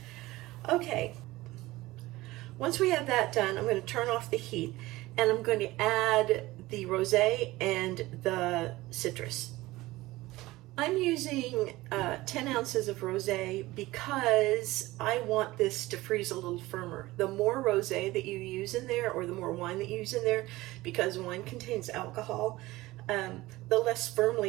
Okay, once we have that done, I'm going to turn off the heat and I'm going to add the rosé and the citrus. I'm using 10 ounces of rosé because I want this to freeze a little firmer. The more rosé that you use in there, or the more wine that you use in there, because wine contains alcohol, the less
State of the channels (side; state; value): left; quieter; 18.8 dB